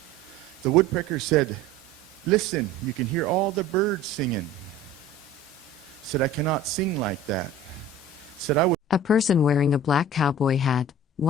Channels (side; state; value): both; normal; correlation 0.42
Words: The woodpecker said, listen, you can hear all the birds singing. Said, I cannot sing like that. Said, I would. A person wearing a black cowboy hat,